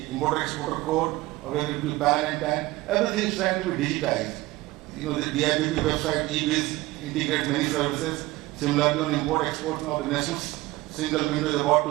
importer-exporter code, or whether it could be PAN and TAN, everything is trying to be digitized. The DIPP website, eBiz, integrates many services. Similarly, on import-export, now the national single window is about to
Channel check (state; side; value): quieter; left; 19.4 dB